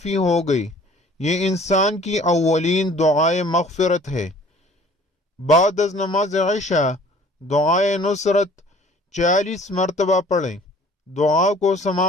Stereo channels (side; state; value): both; normal; correlation 0.51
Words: ہو گئی۔ یہ انسان کی اولین دعائے مغفرت ہے۔ بعد از نماز عشاء دعائے نصرت 40 مرتبہ پڑھیں۔ دعا کو